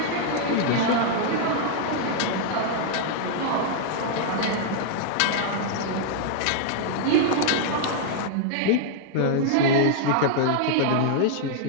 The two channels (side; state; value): both; different; correlation -0.01